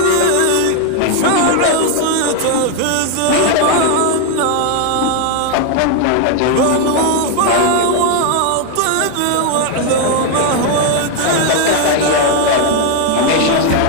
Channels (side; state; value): both; different; correlation 0.00